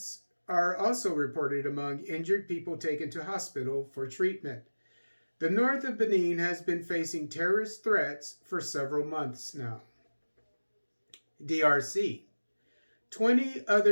are also reported among injured people taken to hospital for treatment. The north of Benin has been facing terrorist threats for several months now. DRC. 20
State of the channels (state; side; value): inverted; both; correlation -1.00